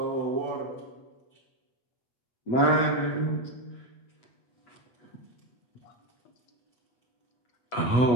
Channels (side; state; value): right; late; 8.1 ms